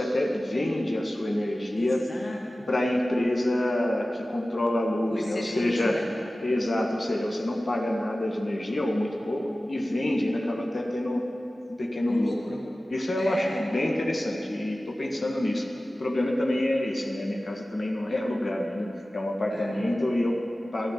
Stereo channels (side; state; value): both; normal; correlation 0.96